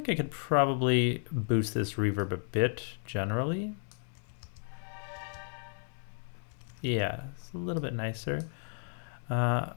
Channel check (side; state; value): right; silent; 56 dB below the other